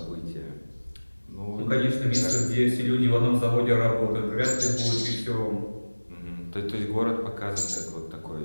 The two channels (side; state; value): both; inverted; correlation -1.00